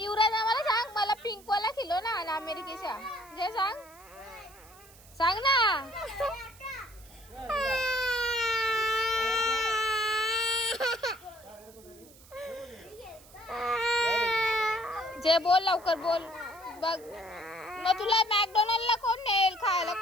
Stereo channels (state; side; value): noise; right; hiss, 23 dB below the sound